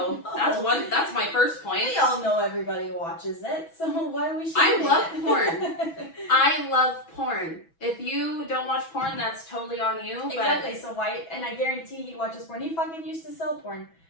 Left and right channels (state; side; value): late; right; 6.1 ms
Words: that's my first point. We all know everybody watches it, so why are we shaming I love it? porn. I love porn. If you don't watch porn, that's totally on you. But Exactly. So why? And I guarantee he watches porn. He fucking used to sell porn.